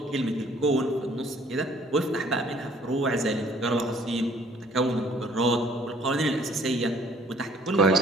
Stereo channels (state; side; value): normal; both; correlation 0.58